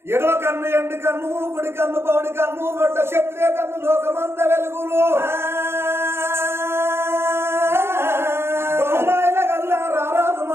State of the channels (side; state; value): left; late; 0.12 ms